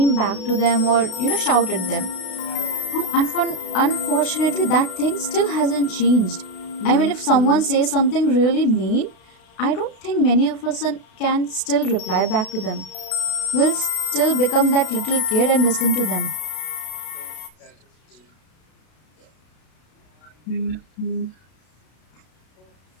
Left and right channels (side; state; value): right; late; 32 ms